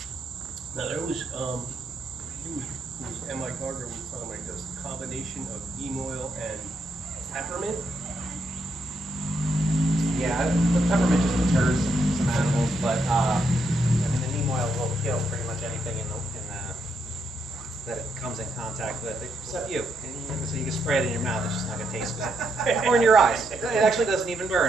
Now there was, M.I. Gardner was talking about this combination of neem oil and peppermint. Yeah, the peppermint just deters some animals, but I mean the neem oil will kill pretty much anything that it comes in contact with, except you. And so you can spray it in your mouth; it's just not gonna taste good, or in your eyes. It actually doesn't even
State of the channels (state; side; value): normal; both; correlation 0.79